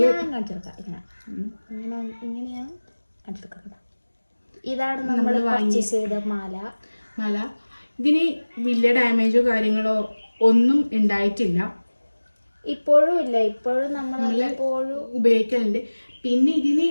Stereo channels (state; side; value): inverted; both; correlation -1.00